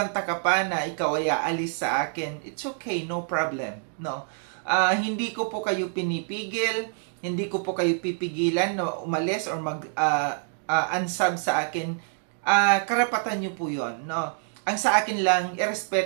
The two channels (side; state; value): left; silent; 61 dB below the other